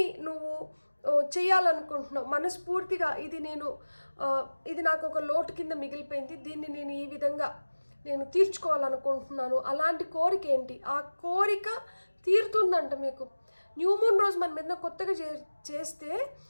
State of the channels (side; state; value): both; inverted; correlation -1.00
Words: నువ్వు చేయాలనుకుంటున్నావు మనస్ఫూర్తిగా, ఇది నాకు ఒక లోటు కింద మిగిలిపోయింది, దీన్ని నేను ఈ విధంగా తీర్చుకోవాలనుకుంటున్నాను, అలాంటి కోరిక ఏంటి, ఆ కోరిక తీరుతుందంట మీకు. న్యూ మూన్ రోజు మనం ఏదైనా కొత్తగా చేస్తే